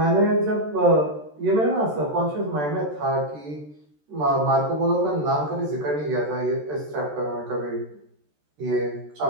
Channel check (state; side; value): late; left; 13 ms